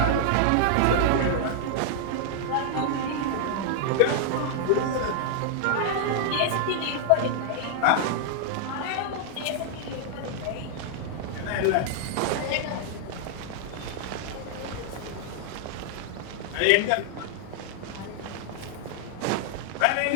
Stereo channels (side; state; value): both; different; correlation -0.01